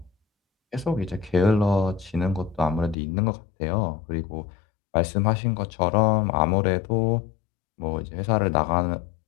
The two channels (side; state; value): right; drops out; at 3.0 s